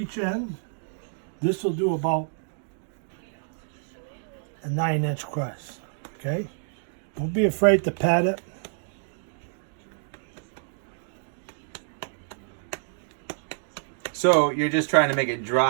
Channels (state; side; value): silent; left; digital silence